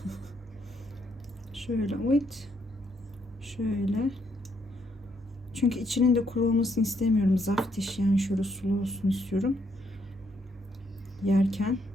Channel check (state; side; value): normal; both; correlation 0.73